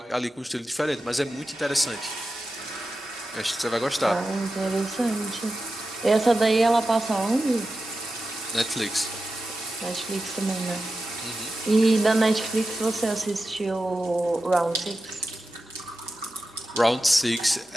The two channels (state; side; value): normal; both; correlation 0.92